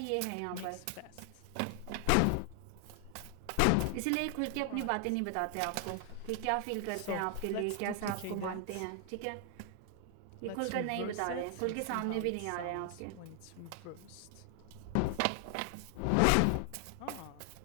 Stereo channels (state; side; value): different; both; correlation 0.00